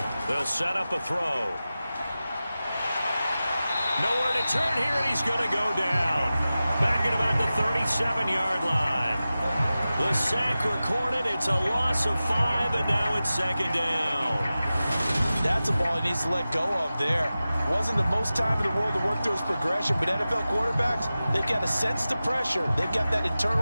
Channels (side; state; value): both; inverted; correlation -0.95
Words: They'll set up a throw. Nowhere to turn here, and he's going to go down. Back at about the 37-yard line. The sack recorded. It's a loss of 5, and now it's 2nd down. That's a ball he needs to let go of there. Wasn't the most time in the world to work through his progression, but NFL quarterbacks, they've got to sense the pressure. They've got that